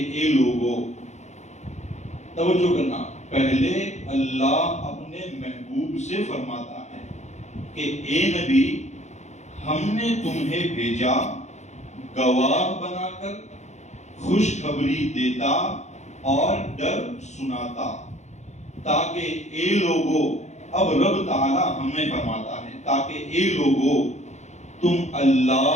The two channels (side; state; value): right; late; 0.33 ms